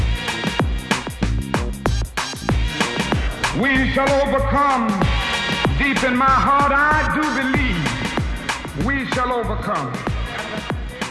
We shall overcome. Deep in my heart, I do believe we shall overcome.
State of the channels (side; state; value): both; identical; correlation 1.00